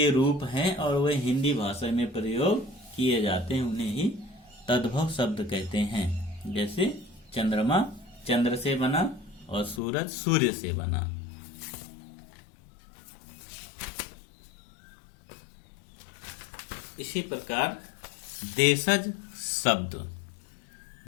रूप हैं और वे हिंदी भाषा में प्रयोग किए जाते हैं, उन्हें ही तद्भव शब्द कहते हैं। जैसे चंद्रमा चंद्र से बना और सूरज सूर्य से बना। इसी प्रकार देशज शब्द।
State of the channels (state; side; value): drops out; right; at 9.8 s